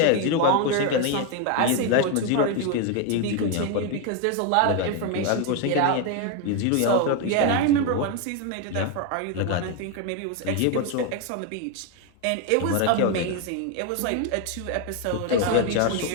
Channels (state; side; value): different; both; correlation 0.01